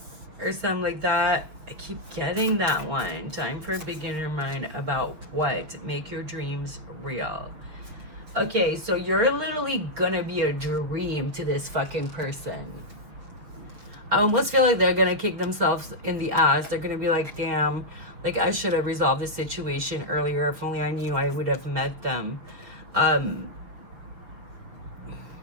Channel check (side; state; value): left; late; 6.6 ms